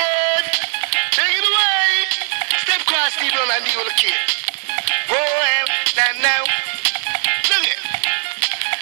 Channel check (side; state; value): left; silent; digital silence